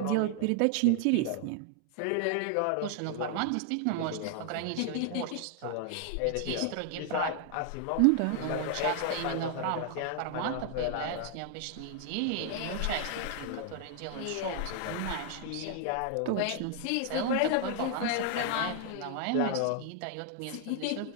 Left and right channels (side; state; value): both; different; correlation 0.00